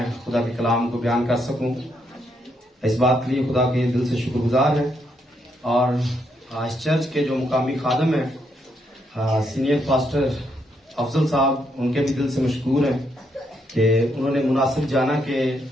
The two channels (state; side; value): normal; both; correlation 0.77